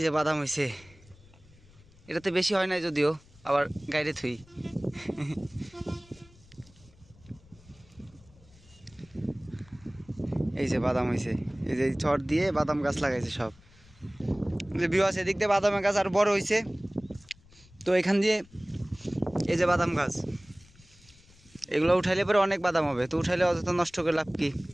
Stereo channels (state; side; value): noise; left; rumble, 26 dB below the sound